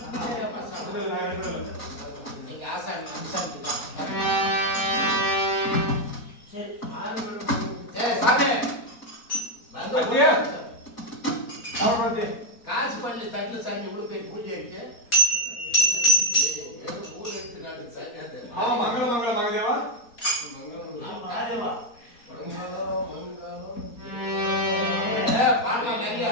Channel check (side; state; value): right; late; 4.3 ms